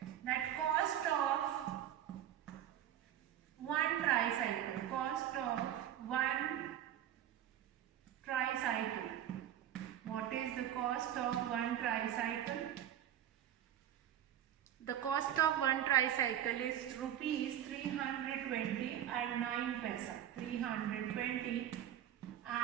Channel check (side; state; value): left; quieter; 11.1 dB